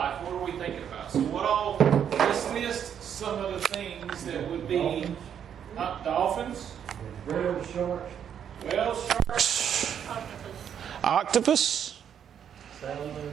what are we thinking about? So let's list some of the things that would be dolphins, Whales, sharks, whales, sharks, Octopus.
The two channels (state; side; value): quieter; left; 8.7 dB